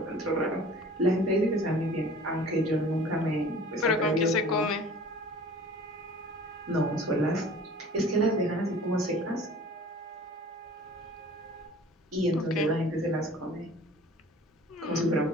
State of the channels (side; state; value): both; normal; correlation 0.45